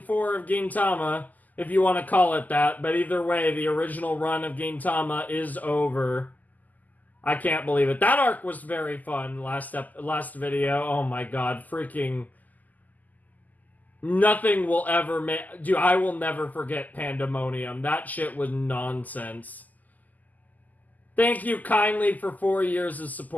of Gintama. if you want to call it that. But either way, the original run of Gintama is over. I can't believe it. That arc was very fun. Last video. Oh my god, freaking. Nothing will ever make. Dude, I will never forget Pandemonium. That shit was nonsense. Thank you kindly for 4 years of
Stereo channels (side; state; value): right; late; 0.081 ms